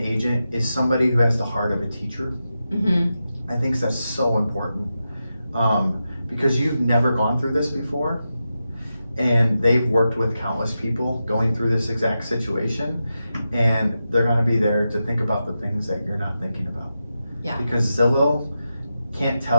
is somebody who has the heart of a teacher. I think that's so important. Because you've never gone through this before, and they've worked with countless people going through this exact situation, and they're gonna be there to think about the things that you're not thinking about. Yeah. Because Zillow can't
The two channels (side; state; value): both; inverted; correlation -0.90